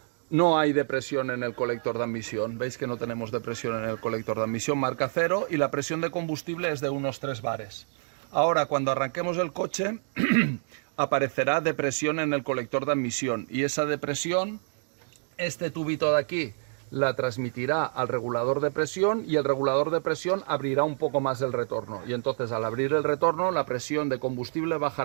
no hay depresión en el colector de admisión. Veis que no tenemos depresión en el colector de admisión, marca 0, y la presión de combustible es de unos 3 bares. Ahora, cuando arranquemos el coche, aparecerá depresión en el colector de admisión, y esa depresión, este tubito de aquí, la transmitirá al regulador de presión, y el regulador de presión abrirá un poco más el retorno. Y entonces, al abrir el retorno, la presión de combustible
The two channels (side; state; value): left; silent; digital silence